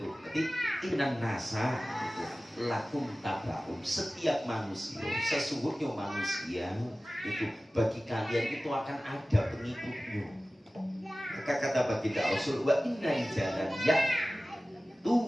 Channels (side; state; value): both; normal; correlation 0.97